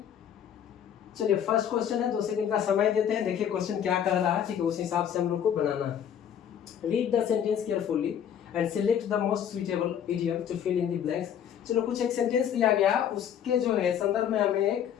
चलिए फर्स्ट क्वेश्चन है, 2 सेकंड का समय देते हैं। देखिए क्वेश्चन क्या कह रहा है। ठीक है, उस हिसाब से हम लोग को बनाना है। Read the sentence carefully and select the most suitable idiom to fill in the blanks. चलो कुछ एक सेंटेंस दिया गया, उसके जो है संदर्भ में हमें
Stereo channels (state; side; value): quieter; right; 9.1 dB